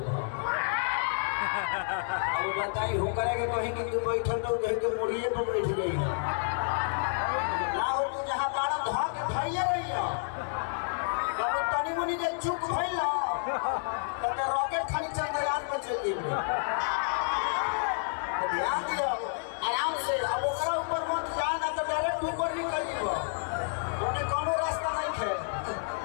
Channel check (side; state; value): right; silent; 55 dB below the other